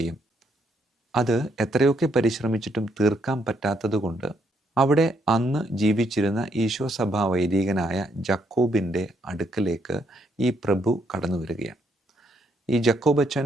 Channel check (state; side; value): normal; both; correlation 0.73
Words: അത് എത്രയൊക്കെ പരിശ്രമിച്ചിട്ടും തീർക്കാൻ പറ്റാത്തതുകൊണ്ട് അവിടെ അന്ന് ജീവിച്ചിരുന്ന ഈശോ സഭാ വൈദികനായ ജക്കോബിൻ്റെ അടുക്കലേക്ക് ഈ പ്രഭു കടന്നു വരികയാണ്. ഈ ജക്കോബച്ചൻ